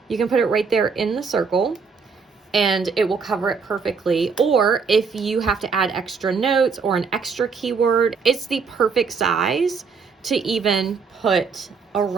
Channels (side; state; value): left; quieter; 5.3 dB